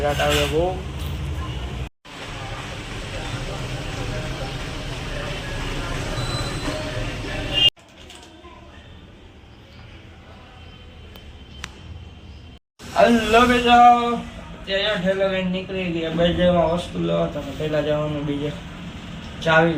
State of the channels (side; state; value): both; identical; correlation 1.00